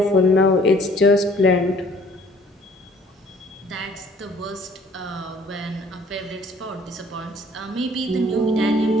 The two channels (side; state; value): both; normal; correlation 0.56